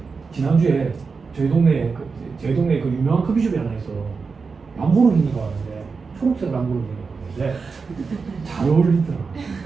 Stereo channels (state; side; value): quieter; left; 4.8 dB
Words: 지난주에 저희 동네에 그 유명한 커피숍이 하나 있어. 람보르기니가 왔는데 초록색 람보르기니가 왔는데 잘 어울리더라.